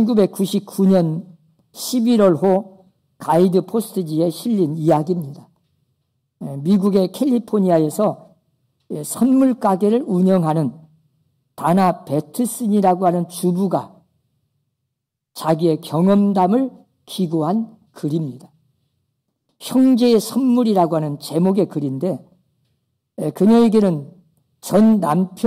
11월호 가이드 포스트지에 실린 이야기입니다. 미국의 캘리포니아에서 선물 가게를 운영하는 다나 베트슨이라고 하는 주부가 자기의 경험담을 기고한 글입니다. 형제의 선물이라고 하는 제목의 글인데, 그녀에게는 전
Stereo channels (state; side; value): identical; both; correlation 1.00